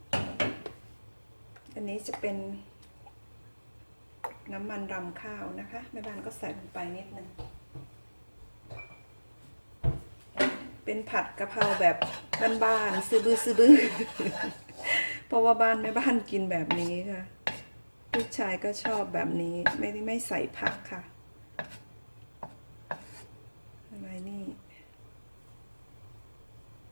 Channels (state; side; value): inverted; both; correlation -1.00